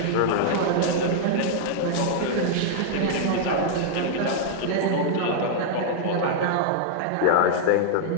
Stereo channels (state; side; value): different; both; correlation -0.01